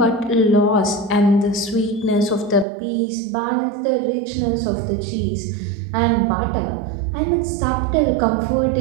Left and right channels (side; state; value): left; drops out; at 2.7 s